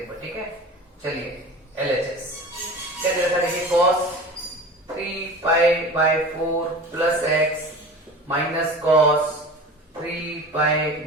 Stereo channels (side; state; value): both; normal; correlation 0.36